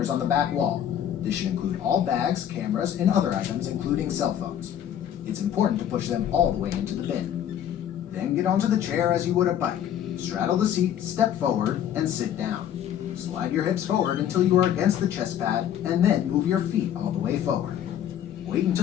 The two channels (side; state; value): right; quieter; 10.2 dB